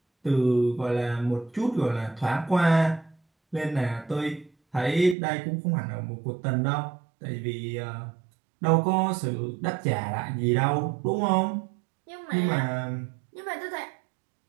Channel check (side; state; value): left; drops out; at 5.2 s